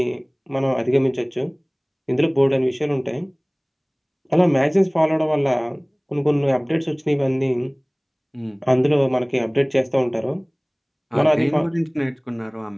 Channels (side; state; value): both; identical; correlation 1.00